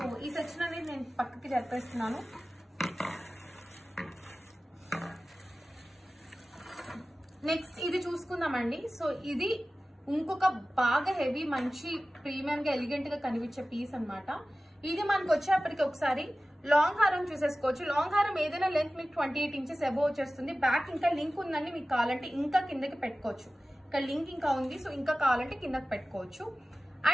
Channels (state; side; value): normal; both; correlation 0.96